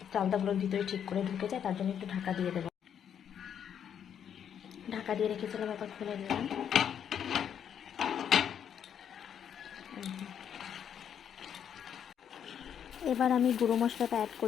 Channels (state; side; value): quieter; right; 8.7 dB